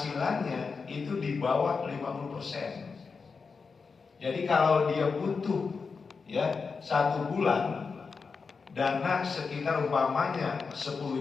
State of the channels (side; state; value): right; quieter; 5.0 dB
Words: itu di bawah 50%. Jadi kalau dia butuh, ya, 1 bulan dana sekitar umpamanya